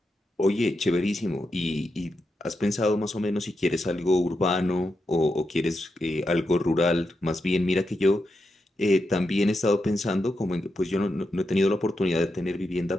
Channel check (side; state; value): both; normal; correlation 0.86